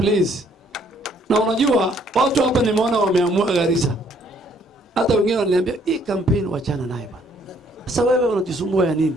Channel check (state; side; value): normal; both; correlation 0.65